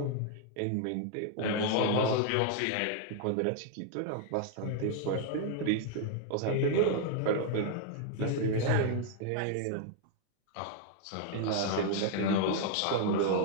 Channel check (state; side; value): different; both; correlation 0.00